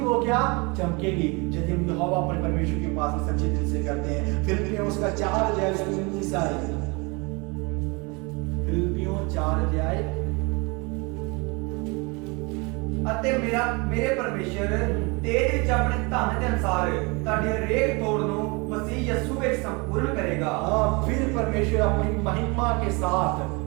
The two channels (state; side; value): quieter; left; 28.6 dB